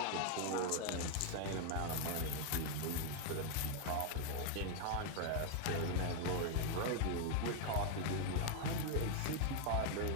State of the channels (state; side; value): different; both; correlation 0.00